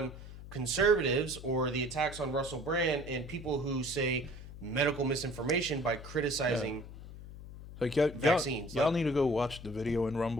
conservatives or the attacks on Russell Brand and people who say medical misinformation by criticizing vaccines. Y'all need to go watch the video in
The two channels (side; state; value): left; noise; hum, 14 dB below the sound